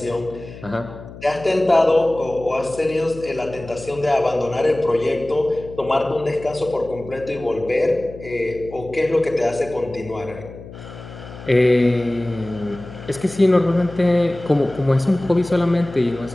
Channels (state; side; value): noise; left; hum, 15 dB below the sound